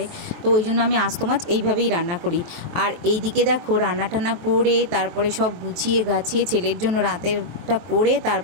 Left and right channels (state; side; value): late; left; 23 ms